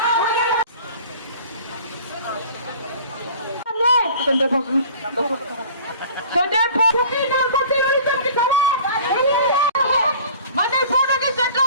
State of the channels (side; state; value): both; inverted; correlation -0.45